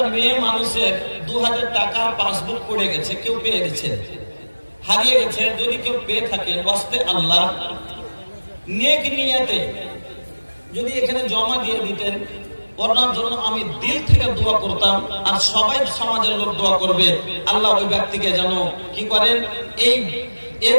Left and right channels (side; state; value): both; inverted; correlation -1.00